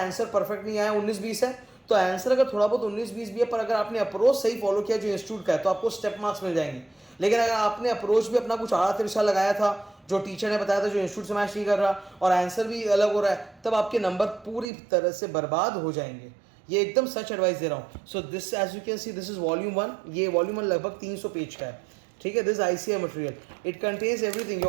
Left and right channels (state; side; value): drops out; left; at 14.7 s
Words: परफेक्ट नहीं आया, 19-20 है, तो आंसर अगर थोड़ा बहुत 19-20 भी है, पर अगर आपने अप्रोच सही फॉलो किया जो इंस्टीट्यूट का है, तो आपको स्टेप मार्क्स मिल जाएंगे। लेकिन अगर आपने अप्रोच भी अपना कुछ आड़ा तिरछा लगाया था, जो टीचर ने बताया था, जो इंस्टीट्यूट से मैच नहीं कर रहा, और आंसर भी अलग हो रहा है, तब आपके नंबर पूरी तरह से बर्बाद हो जाएंगे। ये एकदम सच एडवाइस दे रहा हूँ। So this, as you can see, this is volume 1। ये वॉल्यूम 1 लगभग 300 पेज का है, ठीक है। This ICAI material, it contains everything.